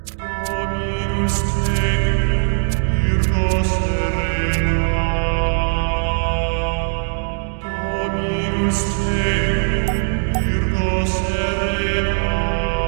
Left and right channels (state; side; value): silent; left; digital silence